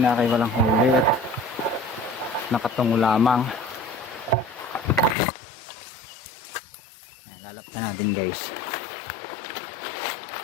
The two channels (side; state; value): right; drops out; at 5.2 s